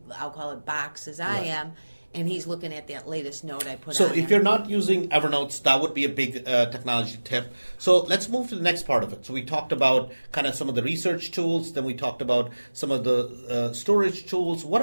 I'll call it, box as I am. And he's looking at that latest note I put on. So if you're not using Evernote, that would be a big technology tip. So let's move to the next part of it. So we talked about kind of some of the research tools. Then we talked about some of the storage tools. What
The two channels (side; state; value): both; inverted; correlation -1.00